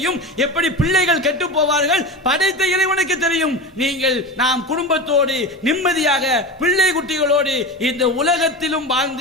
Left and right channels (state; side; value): normal; both; correlation 0.26